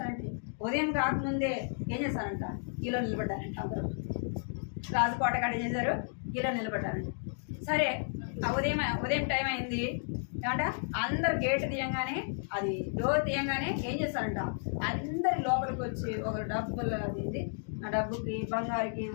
ఉదయం కాకముందే ఏం చేస్తారంట, కిలో నిలబడ్డారంట. అందరూ రాజుకోట కాడ ఏం చేశారు, కిలో నిలబడ్డారంట. సరే ఉదయం టైం అయింది ఏమంట, అందరు గేట్ తీయంగానే, అది డోర్ తీయంగానే ఏం చేస్తారంట, అందరి లోపలికి వచ్చి ఒక డబ్బులు అది ఆ డబ్బుకి, బంగారుకి,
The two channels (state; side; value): silent; right; digital silence